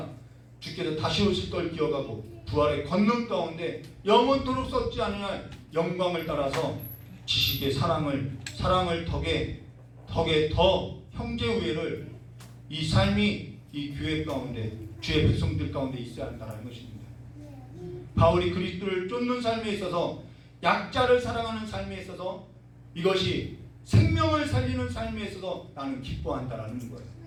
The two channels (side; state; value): both; identical; correlation 1.00